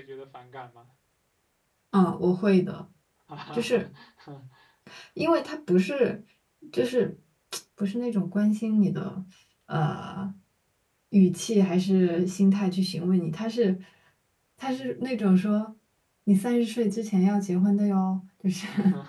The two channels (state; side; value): identical; both; correlation 1.00